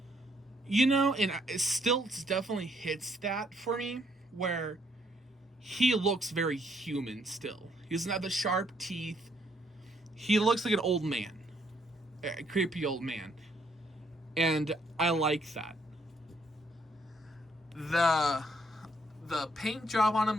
And Stilts definitely hits that for me, where he looks very human still. He doesn't have the sharp teeth. He looks like an old man. A creepy old man. And I like that. The paint job on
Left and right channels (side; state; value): both; normal; correlation 0.70